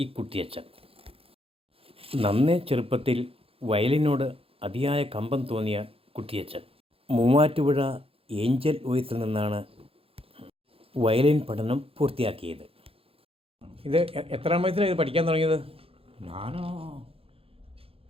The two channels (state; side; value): late; left; 0.27 ms